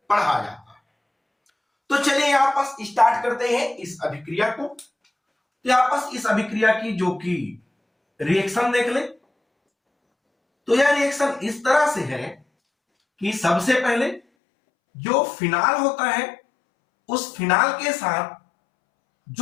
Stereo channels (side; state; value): right; drops out; at 14.2 s